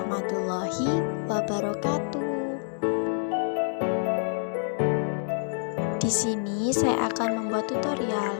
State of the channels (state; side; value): silent; right; 60 dB below the other